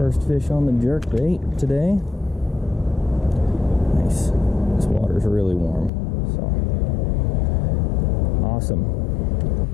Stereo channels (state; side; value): drops out; right; at 5.9 s